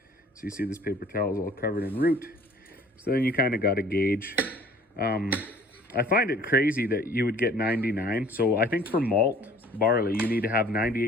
So you see this paper towel is all covered in root. So then you kind of got to gauge. I find it crazy that you would get 99. So I think for malt barley, you need to have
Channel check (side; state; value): both; normal; correlation 0.52